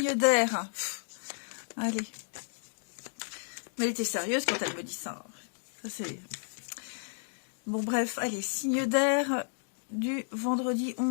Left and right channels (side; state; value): right; silent; digital silence